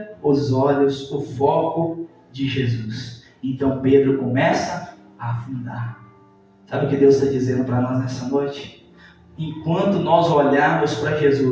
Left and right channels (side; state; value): both; identical; correlation 1.00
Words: os olhos, o foco de Jesus. Então Pedro começa a afundar. Sabe o que Deus está dizendo para nós nessa noite? Enquanto nós olharmos para